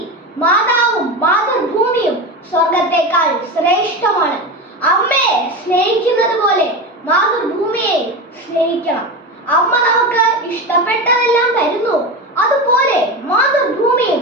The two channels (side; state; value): both; normal; correlation 0.22